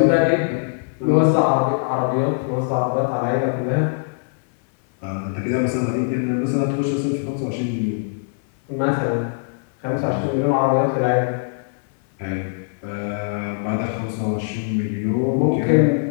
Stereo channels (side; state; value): right; silent; 65 dB below the other